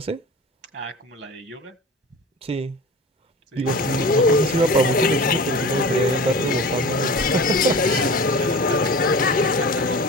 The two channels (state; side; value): normal; both; correlation 0.36